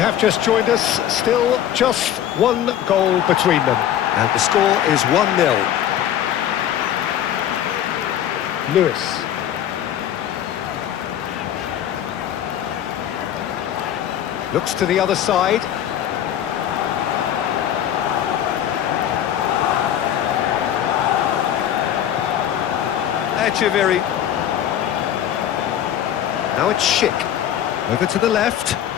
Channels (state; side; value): quieter; right; 10.6 dB